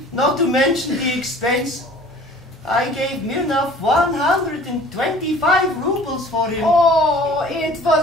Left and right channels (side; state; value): both; normal; correlation 0.48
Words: not to mention the expense. I gave Mirnov 125 rubles for him. Oh, it